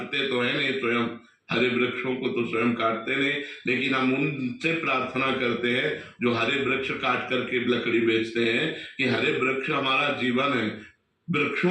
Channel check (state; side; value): identical; both; correlation 1.00